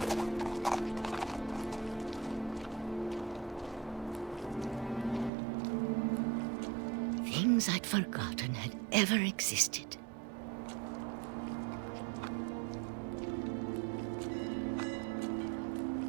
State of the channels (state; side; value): drops out; left; at 5.3 s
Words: Things I'd forgotten had ever existed.